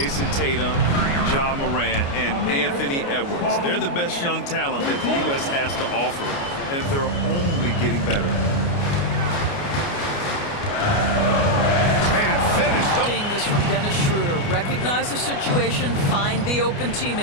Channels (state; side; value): late; right; 29 ms